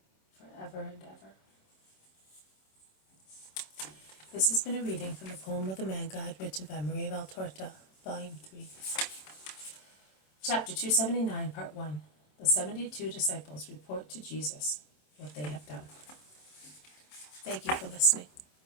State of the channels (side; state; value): right; late; 27 ms